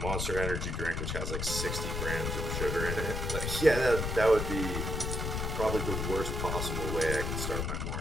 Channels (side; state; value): left; noise; rumble, 2 dB below the sound